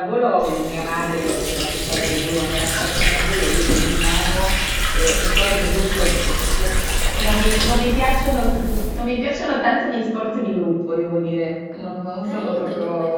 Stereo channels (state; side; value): identical; both; correlation 1.00